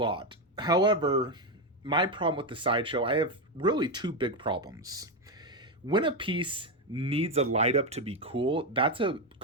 However, my problem with the Sideshow, I have really two big problems. When a piece needs a light up to be cool, that's a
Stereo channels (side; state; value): both; normal; correlation 0.08